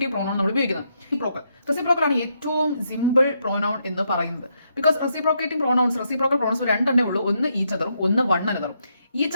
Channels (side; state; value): both; inverted; correlation -0.78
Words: പ്രോനൗൺ നമ്മൾ ഉപയോഗിക്കുന്നത്. റെസിപ്രോക്കൽ ആണ് ഏറ്റവും സിമ്പിൾ പ്രോനൗൺ എന്ന് പറയുന്നത്. ബിക്കോസ് റെസിപ്രോക്കേറ്റിംഗ് പ്രോനൗൺസ് രണ്ടെണ്ണേ ഉള്ളൂ. ഒന്ന് ഈച്ച് അതറും, ഒന്ന് വൺ അനദറും.